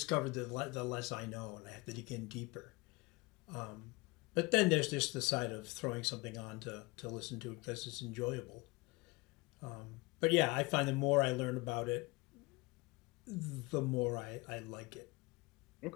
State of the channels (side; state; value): right; quieter; 24.6 dB